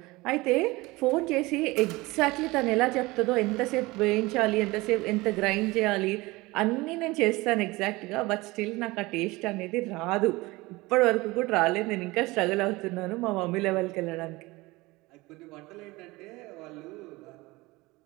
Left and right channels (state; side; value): quieter; left; 21.7 dB